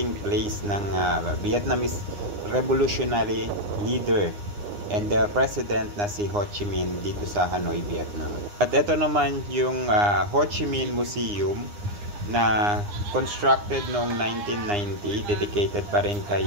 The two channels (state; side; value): late; left; 9.8 ms